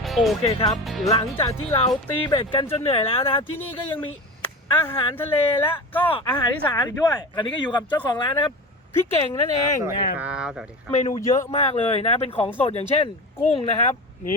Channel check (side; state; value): both; normal; correlation 0.29